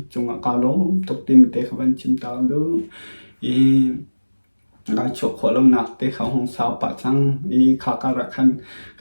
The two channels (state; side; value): inverted; both; correlation -1.00